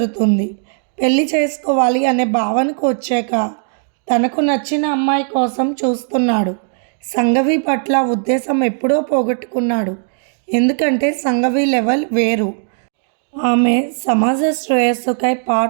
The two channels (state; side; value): silent; left; 68 dB below the other